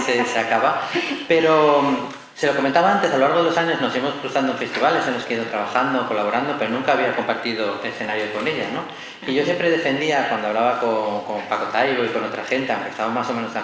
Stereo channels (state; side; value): identical; both; correlation 1.00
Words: acaba, pero se lo comentaba antes, a lo largo de los años nos hemos cruzado en festivales, hemos ido trabajando, colaborando, pero nunca había compartido escenario con ella, ¿no? Y yo siempre defendía, cuando hablaba con Paco Taibo y con otra gente, aunque estábamos más o menos de